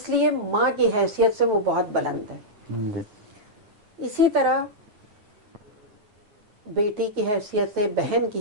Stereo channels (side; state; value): left; late; 9.3 ms